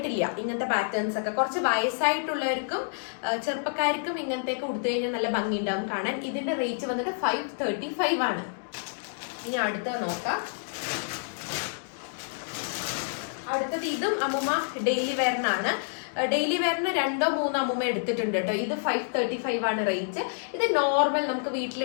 ഇങ്ങനത്തെ പാറ്റേൺസ് ഒക്കെ. കുറച്ച് വയസ്സായിട്ടുള്ളവർക്കും ചെറുപ്പക്കാർക്കും ഇങ്ങനത്തെയൊക്കെ കൊടുത്തു കഴിഞ്ഞാൽ നല്ല ഭംഗി ഉണ്ടാവും കാണാൻ. ഇതിന്റെ റേറ്റ് വന്നിട്ട് 535 ആണ്. ഇനി അടുത്തത് നോക്കാം. അടുത്തത് ഇതും അമ്മൂമ്മ ഡെയിലി വെയറിനാണ്. ഡെയിലി വെയറിന് 2-3 അമ്മൂമ്മ എടുത്തിട്ടുണ്ട് കേട്ടോ. ഇത് 535 ആണ് റേറ്റ്. ഇത് നോർമൽ നമുക്ക്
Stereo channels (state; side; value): silent; right; digital silence